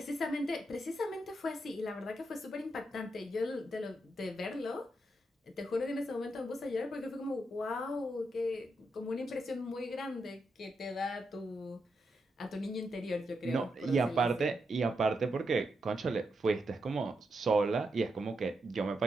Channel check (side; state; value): both; normal; correlation 0.84